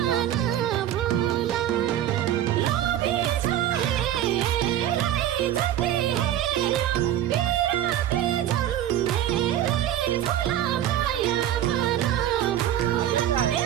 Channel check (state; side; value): quieter; left; 11.5 dB